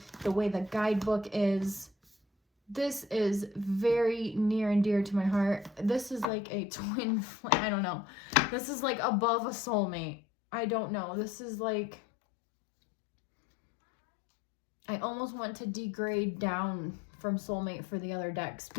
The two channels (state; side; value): drops out; right; at 6.2 s